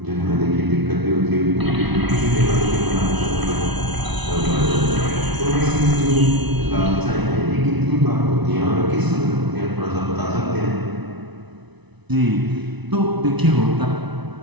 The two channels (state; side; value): late; left; 1.0 ms